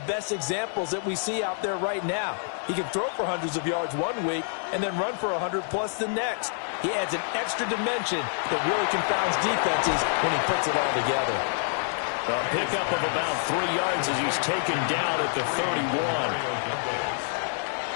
best examples that we see out there right now. He can throw for hundreds of yards one week and then run for 100+ the next. He adds an extra dimension that really confounds defenses when he puts it all together. A pickup of about 3 yards as he's taken down at the 31.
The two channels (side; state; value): right; silent; digital silence